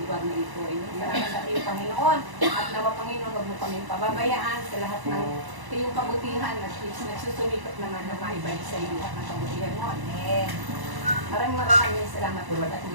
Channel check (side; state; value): left; late; 1.0 ms